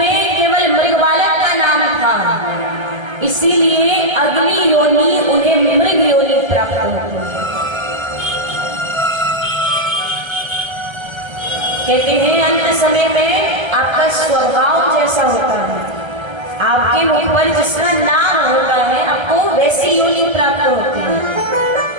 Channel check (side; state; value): left; late; 1.3 ms